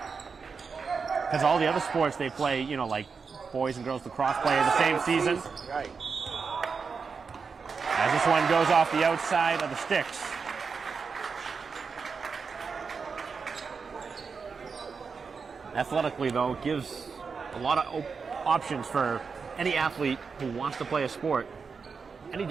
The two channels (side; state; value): left; quieter; 5.3 dB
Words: Because all the other sports they play, you know, like boys and girls lacrosse play in the same season. Right. As this one goes off the outside of the sticks. Athletically, though, it gives a lot of options for any athlete who wants to play a sport. Any